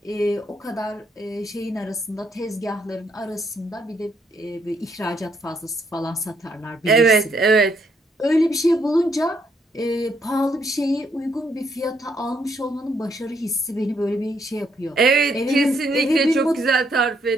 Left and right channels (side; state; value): both; normal; correlation 0.73